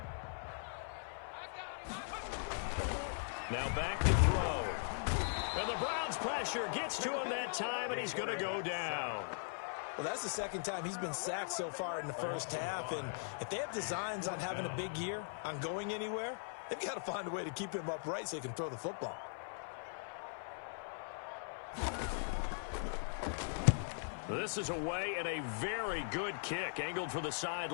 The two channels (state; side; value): silent; right; 51 dB below the other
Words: Now back to throw. And the Browns pressure gets to him that time, and he's going to go down. Well, that's the 2nd time he's been sacked so far in the first half. And if they have designs on having a big year, on going anywhere, they've got to find a way to keep him upright so he can throw the football. This is away and a very good kick angled for the